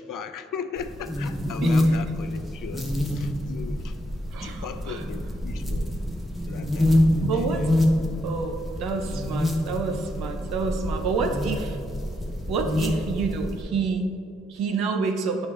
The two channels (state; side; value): normal; both; correlation 0.78